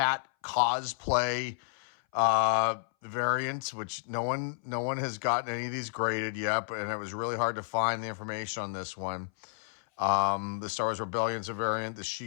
cosplay variant, which no one has gotten any of these graded yet, and it was really hard to find the information on this one. The Star Wars Rebellion's a variant. The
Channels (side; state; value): right; silent; 57 dB below the other